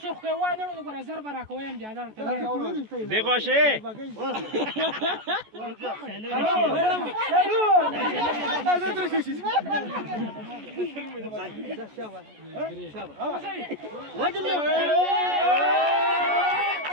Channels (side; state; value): left; late; 14 ms